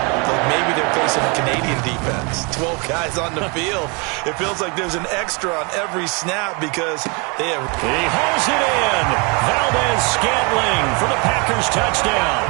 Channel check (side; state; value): left; quieter; 31.2 dB